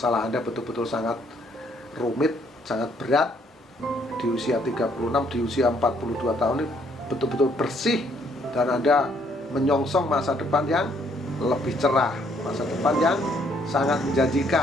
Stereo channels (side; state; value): both; normal; correlation 0.67